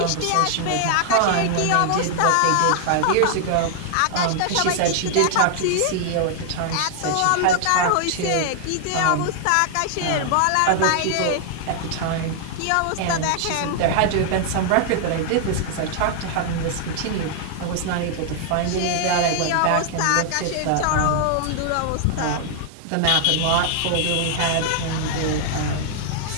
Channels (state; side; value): different; both; correlation 0.00